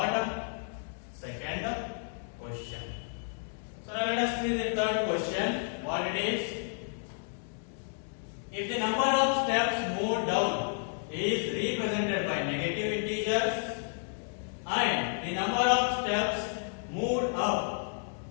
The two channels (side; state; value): right; silent; 57 dB below the other